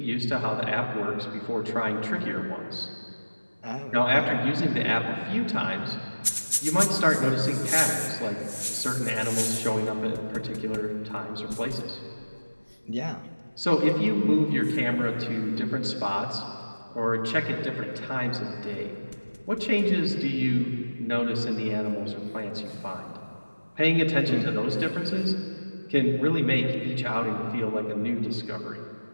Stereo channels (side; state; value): both; inverted; correlation -1.00